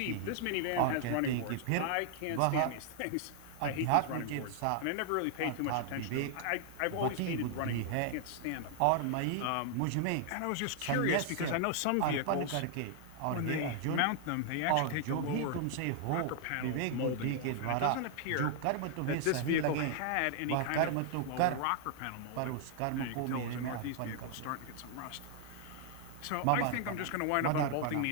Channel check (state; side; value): different; both; correlation 0.00